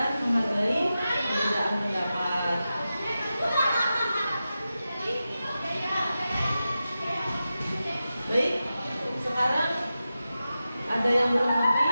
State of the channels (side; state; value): both; inverted; correlation -0.92